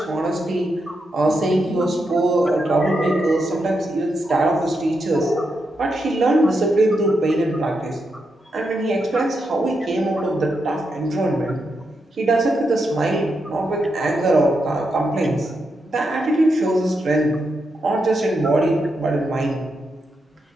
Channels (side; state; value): both; normal; correlation 0.84